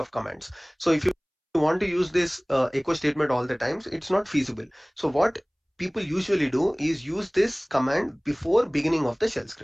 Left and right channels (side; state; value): both; identical; correlation 1.00